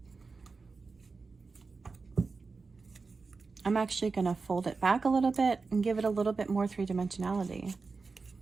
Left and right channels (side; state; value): left; quieter; 4.3 dB